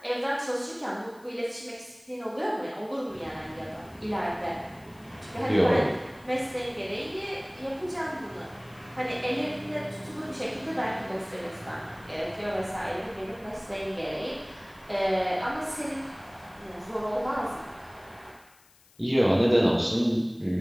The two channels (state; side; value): noise; left; hiss, 28 dB below the sound